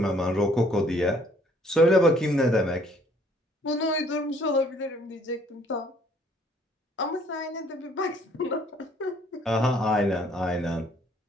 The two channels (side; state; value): both; normal; correlation 0.61